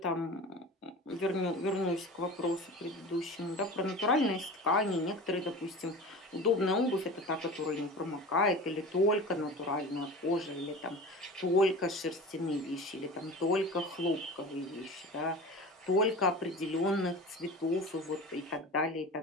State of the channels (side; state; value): both; normal; correlation 0.35